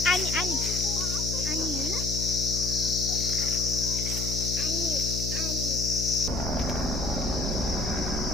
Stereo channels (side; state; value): left; noise; hum, 4 dB below the sound